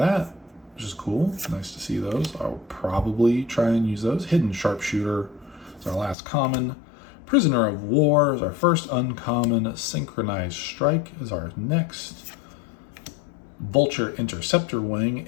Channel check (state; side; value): drops out; right; at 6.2 s